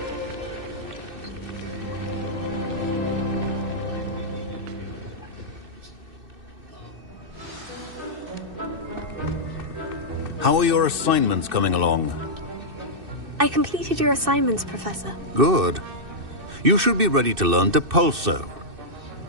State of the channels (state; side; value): late; left; 2.6 ms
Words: How are your assignments coming along? I completed your assignments, Professor. Good. You should be ready to learn Depulso.